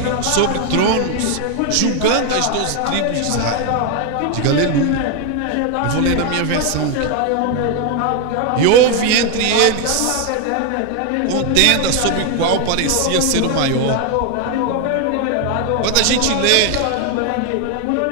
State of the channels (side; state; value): both; different; correlation 0.01